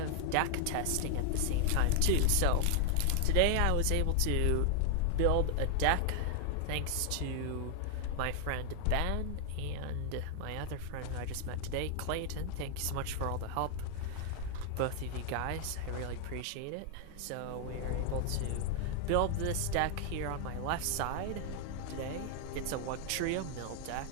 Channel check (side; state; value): both; different; correlation 0.00